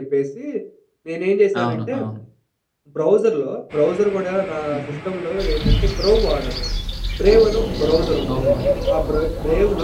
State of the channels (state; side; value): identical; both; correlation 1.00